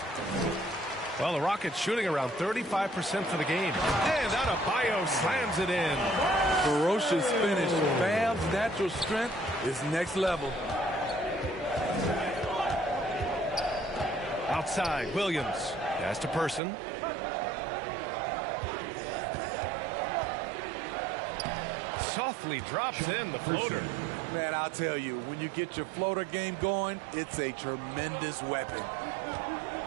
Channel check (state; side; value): drops out; left; at 16.6 s